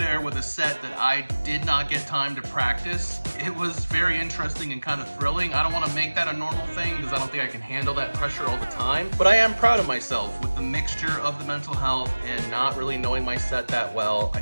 with a set that I did not get time to practice, it was very interesting and kind of thrilling. I don't want to make that a normal thing because I don't think I can handle that pressure all the time, but I am proud of myself with the mixture of the mental health and not really knowing my set that well. I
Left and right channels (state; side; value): inverted; both; correlation -1.00